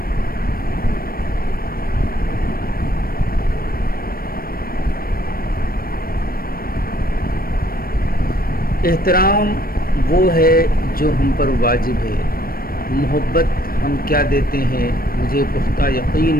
احترام وہ ہے جو ہم پر واجب ہے۔ محبت ہم کیا دیتے ہیں؟ مجھے پختہ یقین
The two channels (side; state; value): right; late; 0.43 ms